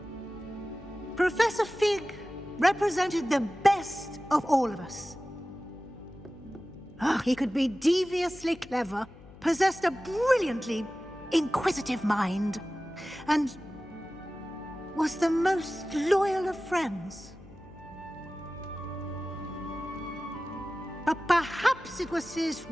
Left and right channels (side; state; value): left; noise; hum, 20 dB below the sound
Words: Professor Fig represented the best of all of us. He could be deviously clever, possessed a brilliantly inquisitive mind, and was the most loyal of friends. But perhaps it was his